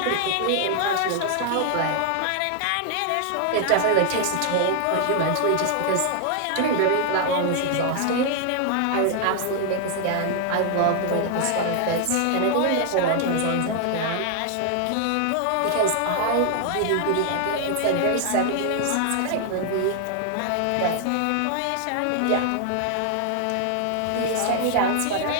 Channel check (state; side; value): different; both; correlation 0.00